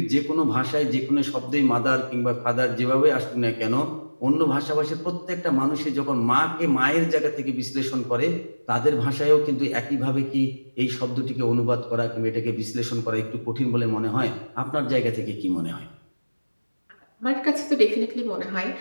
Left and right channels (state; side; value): inverted; both; correlation -1.00